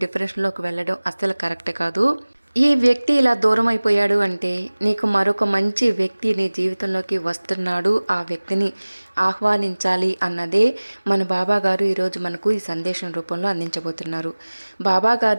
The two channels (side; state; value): both; inverted; correlation -1.00